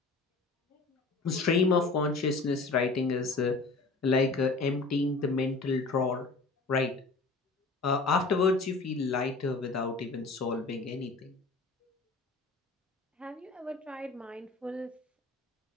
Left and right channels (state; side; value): quieter; right; 3.7 dB